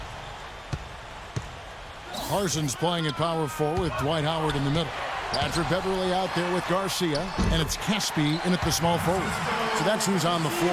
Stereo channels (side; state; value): both; identical; correlation 1.00